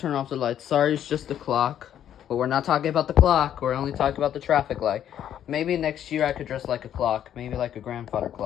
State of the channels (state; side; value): quieter; right; 10.3 dB